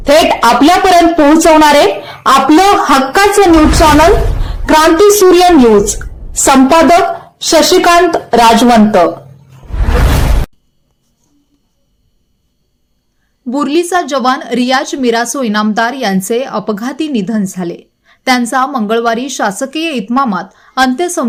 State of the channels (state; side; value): identical; both; correlation 1.00